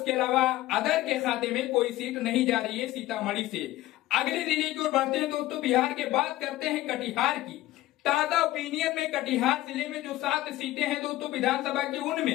अलावा अदर के खाते में कोई सीट नहीं जा रही है सीतामढ़ी से। अगले जिले की ओर बढ़ते हैं दोस्तों बिहार के, बात करते हैं कटिहार की। ताजा ओपिनियन में कटिहार जिले में जो 7 सीटें हैं दोस्तों विधानसभा की,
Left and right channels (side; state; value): right; quieter; 16.1 dB